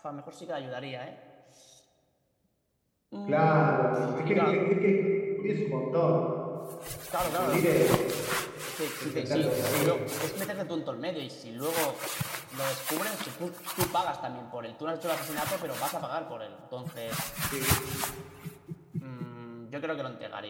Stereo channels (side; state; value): both; identical; correlation 1.00